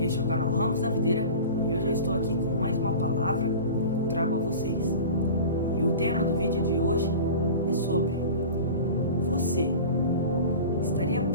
é o canal Ramos da Videira e hoje eu estou aqui com mais uma palavra que eu trago a vocês. E o tema do vídeo de hoje é sobre: você estaria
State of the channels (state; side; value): inverted; both; correlation -0.36